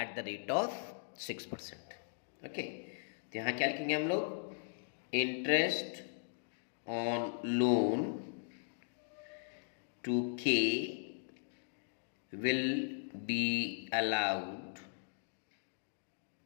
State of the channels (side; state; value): right; silent; digital silence